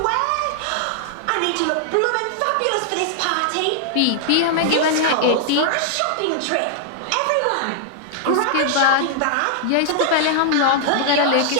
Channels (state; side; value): different; both; correlation -0.01